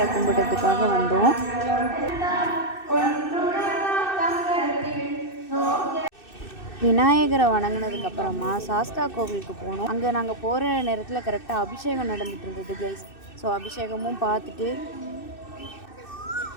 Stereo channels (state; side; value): late; right; 2.6 ms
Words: கும்பிட்றதுக்காக வந்தோம். விநாயகரை வணங்கினதுக்கப்புறமா சாஸ்தா கோவிலுக்கு போனோம். அங்கே நாங்கள் போகிற நேரத்தில் கரெக்டாக அபிஷேகம் நடந்துகிட்டு இருந்தது கைஸ். ஸோ அபிஷேகமும் பார்த்துட்டு